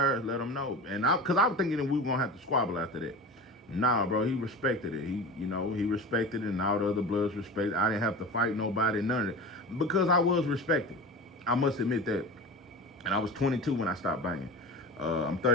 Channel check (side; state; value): both; normal; correlation 0.31